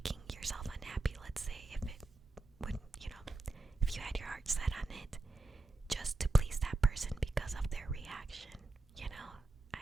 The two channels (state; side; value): quieter; left; 3.2 dB